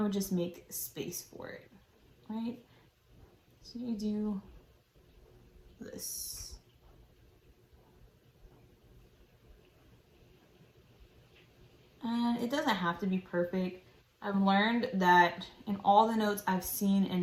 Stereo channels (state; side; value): identical; both; correlation 1.00